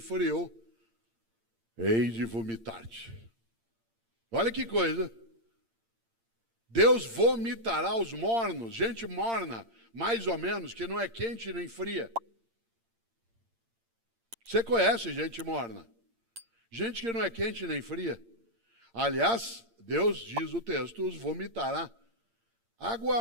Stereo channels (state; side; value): late; left; 8.7 ms